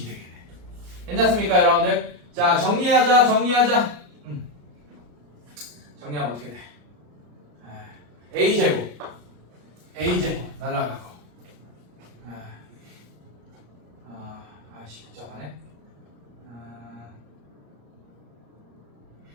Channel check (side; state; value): left; late; 34 ms